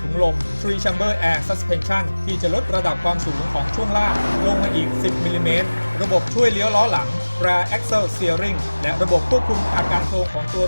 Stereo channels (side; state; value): both; inverted; correlation -1.00